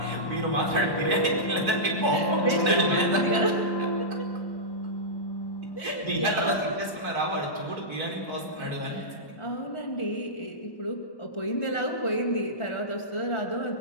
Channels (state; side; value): late; right; 1.1 ms